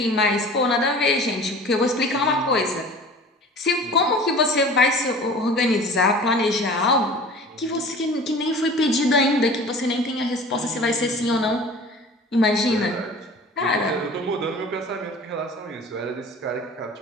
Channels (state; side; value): normal; both; correlation 0.42